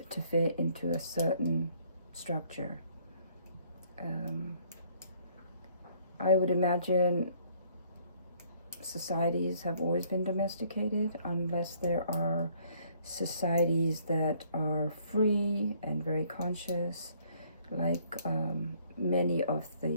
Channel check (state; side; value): inverted; both; correlation -0.63